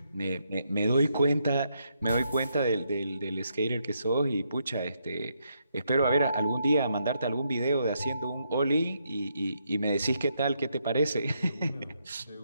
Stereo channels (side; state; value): both; inverted; correlation -0.78